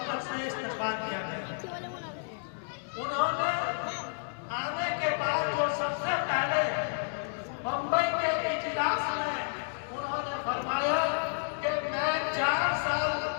سے استقبال کیا گیا۔ انہوں نے آنے کے بعد جو سب سے پہلے بمبئی کے اجلاس میں انہوں نے فرمایا کہ میں 4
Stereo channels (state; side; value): silent; right; digital silence